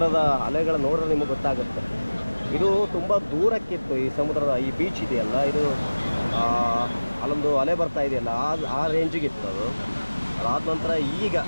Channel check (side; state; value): both; inverted; correlation -1.00